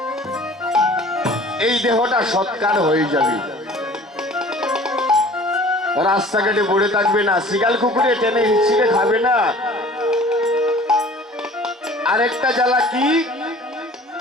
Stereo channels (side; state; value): both; normal; correlation 0.47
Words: এই দেহটা সৎকার হয়ে যাবে, রাস্তাঘাটে পড়ে থাকবে না, শিগাল কুকুরে টেনে হিচড়ে খাবে না। আরেকটা জ্বালা কি?